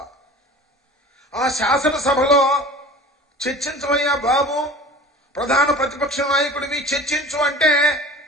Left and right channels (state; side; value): normal; both; correlation 0.40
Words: ఆ శాసనసభలో చర్చించవయ్యా బాబు, ప్రధాన ప్రతిపక్ష నాయకుడివి చర్చించు అంటే